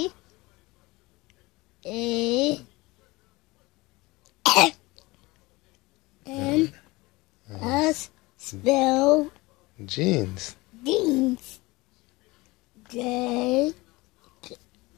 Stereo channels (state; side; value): quieter; right; 22.0 dB